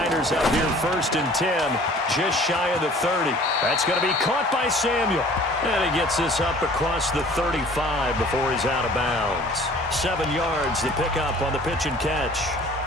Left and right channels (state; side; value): normal; both; correlation 0.50